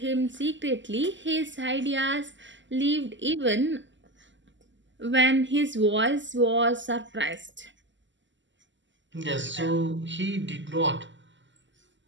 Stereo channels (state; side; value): late; left; 0.54 ms